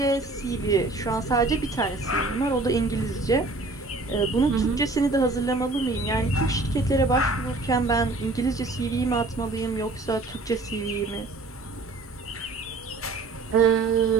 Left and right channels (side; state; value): left; quieter; 3.3 dB